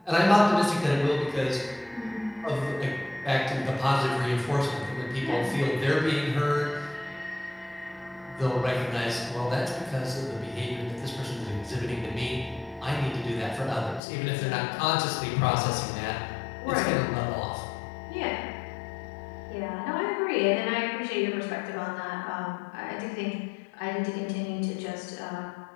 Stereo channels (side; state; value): right; drops out; at 14.0 s